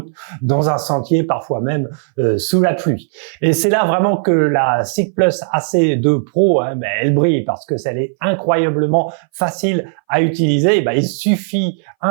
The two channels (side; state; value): left; silent; 63 dB below the other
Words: dans un sentier, parfois même sous la pluie. Et c'est là vraiment que la SICK+ AC2 Pro, elle brille parce que elle est incroyablement facile à utiliser. Il suffit